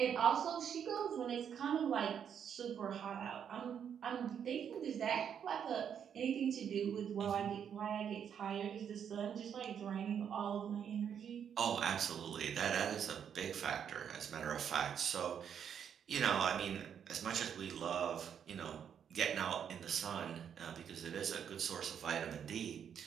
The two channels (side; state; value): left; quieter; 8.2 dB